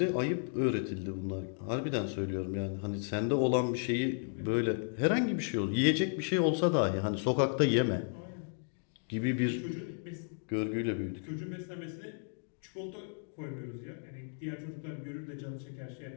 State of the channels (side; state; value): right; silent; digital silence